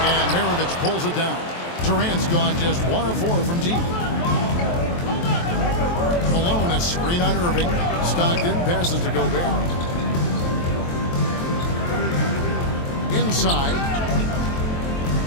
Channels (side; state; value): right; late; 23 ms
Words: And Maravich pulls it down. Durant's gone just 1 of 4 from deep. Malone, a screen on Irving. Stockton passes to Gobert. Inside.